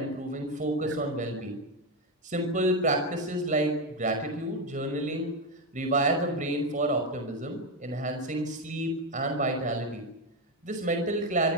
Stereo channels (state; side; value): normal; both; correlation 0.09